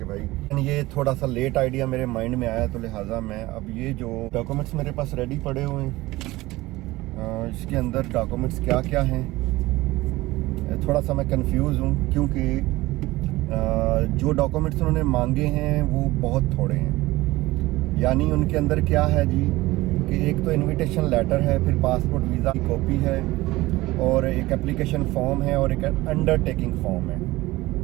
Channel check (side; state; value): left; quieter; 19.0 dB